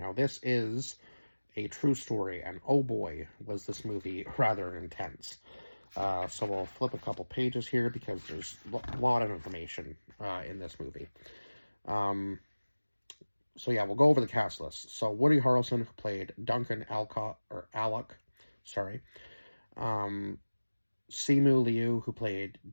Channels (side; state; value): both; inverted; correlation -1.00